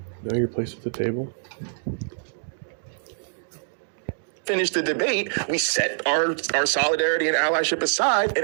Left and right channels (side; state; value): left; silent; digital silence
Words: Know your place at the table. finish the debate, we set our solidarity and allyship aside, and